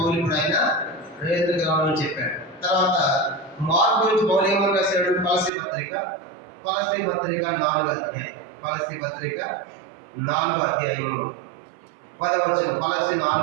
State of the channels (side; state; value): left; drops out; at 5.5 s